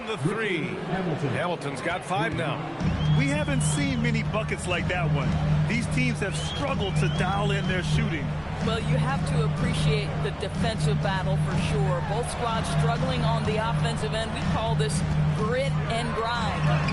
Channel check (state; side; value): identical; both; correlation 1.00